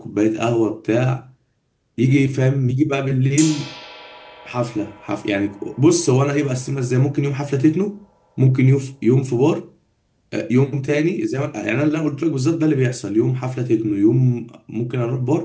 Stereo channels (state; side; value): identical; both; correlation 1.00